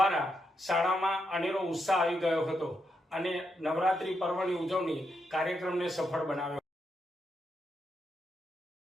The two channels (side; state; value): both; normal; correlation 0.82